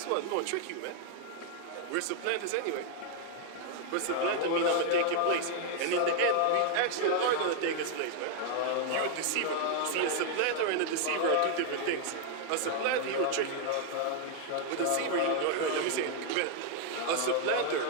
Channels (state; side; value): different; both; correlation 0.00